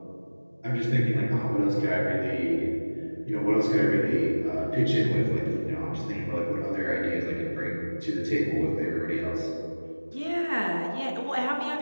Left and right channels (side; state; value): both; inverted; correlation -1.00